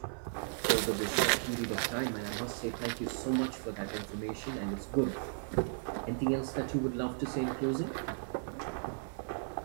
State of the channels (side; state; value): left; silent; 54 dB below the other